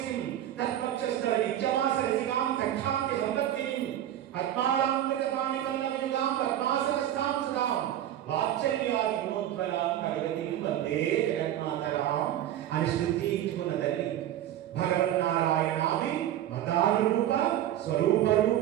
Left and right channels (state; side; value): quieter; left; 12.0 dB